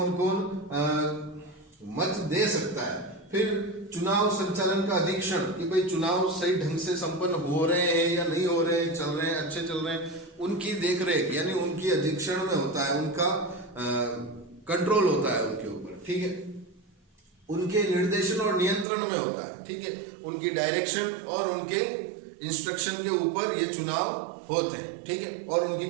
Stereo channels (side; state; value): left; drops out; at 18.9 s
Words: कौन मत दे सकता है। फिर चुनाव संचालन का अधीक्षण कि भाई चुनाव सही ढंग से संपन्न हो रहे हैं या नहीं हो रहे हैं, चल रहे हैं, अच्छे चल रहे हैं, उनकी देखरेख यानी उनकी अधीक्षण में होता है, उनका कंट्रोल होता है उनके ऊपर। ठीक है, उनके निर्देशन और नियंत्रण में होता है। ठीक है, उनकी डायरेक्शन और उनके इंस्ट्रक्शन के ऊपर ये चुनाव होते हैं। ठीक है, और उनकी